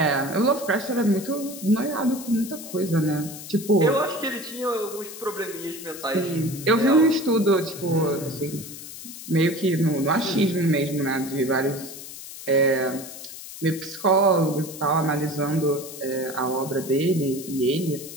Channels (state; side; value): noise; left; hiss, 12 dB below the sound